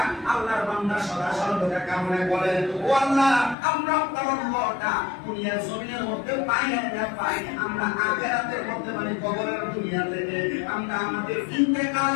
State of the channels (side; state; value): right; drops out; at 3.6 s